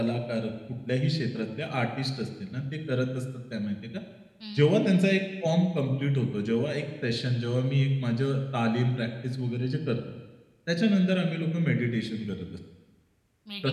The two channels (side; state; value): both; identical; correlation 1.00